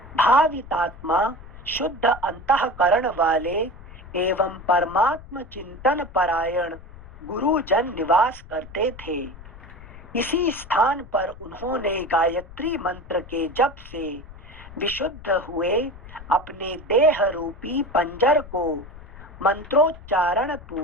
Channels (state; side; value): noise; left; rumble, 17 dB below the sound